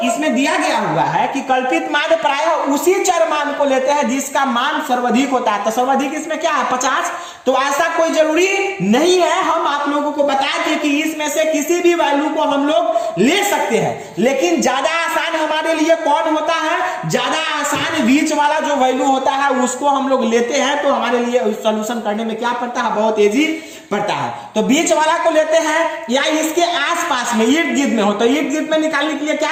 इसमें दिया गया हुआ है कि कल्पित माध्य प्रायः उसी चर मान को लेते हैं जिसका मान सर्वाधिक होता है। तो सर्वाधिक इसमें क्या है 50, तो ऐसा कोई जरूरी नहीं है, हम आप लोगों को बताए थे कि इसमें से किसी भी वैल्यू को हम लोग ले सकते हैं, लेकिन ज्यादा आसान हमारे लिए कौन होता है, ज्यादा आसान बीच वाला जो वैल्यू होता है उसको हम लोग लेते हैं। तो हमारे लिए सोल्यूशन करने में क्या पड़ता है, बहुत इजी पड़ता है। तो बीच वाला को लेते हैं या इसके आसपास में इर्द गिर्द में हो, तो इर्द गिर्द में निकालने के लिए क्या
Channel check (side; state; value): both; identical; correlation 1.00